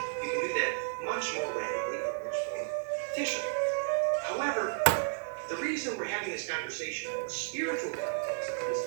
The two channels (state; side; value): silent; left; digital silence